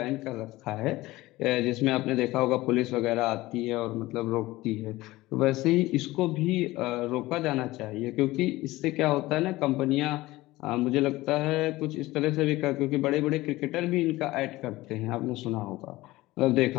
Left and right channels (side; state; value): right; quieter; 18.6 dB